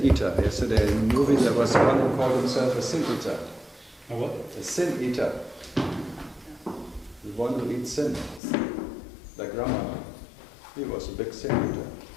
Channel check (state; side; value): drops out; right; at 8.4 s